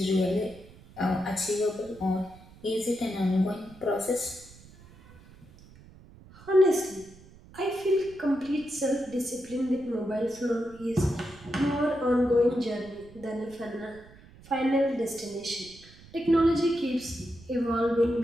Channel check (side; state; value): right; noise; rumble, 22 dB below the sound